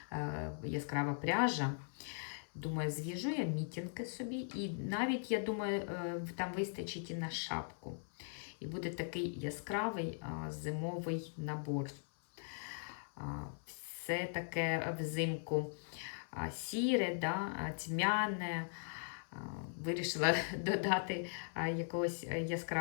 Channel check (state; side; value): silent; right; 51 dB below the other